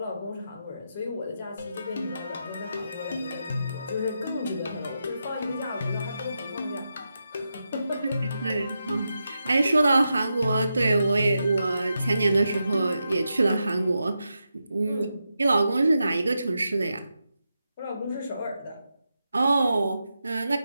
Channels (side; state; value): both; inverted; correlation -0.87